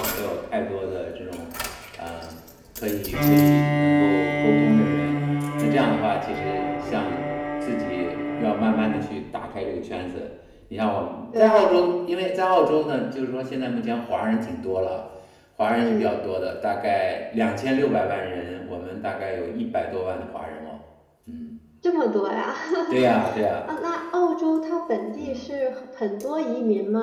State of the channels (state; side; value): identical; both; correlation 1.00